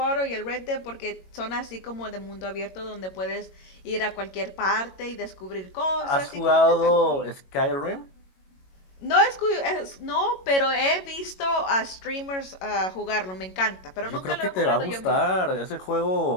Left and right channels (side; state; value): right; late; 22 ms